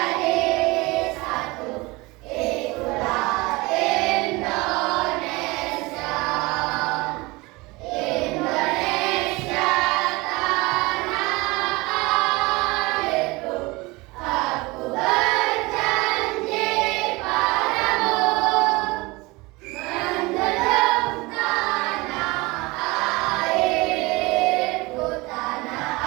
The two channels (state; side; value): quieter; left; 23.4 dB